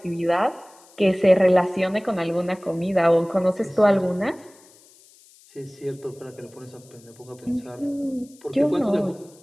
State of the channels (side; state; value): left; noise; hiss, 27 dB below the sound